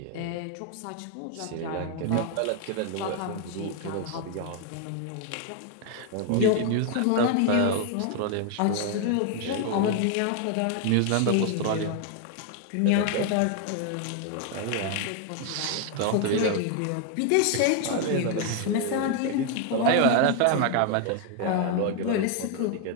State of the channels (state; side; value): different; both; correlation 0.00